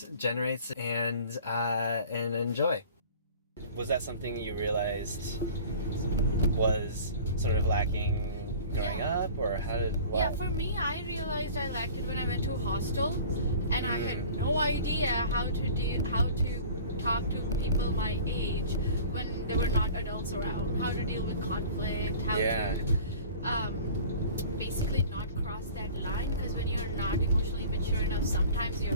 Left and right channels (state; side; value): inverted; both; correlation -0.44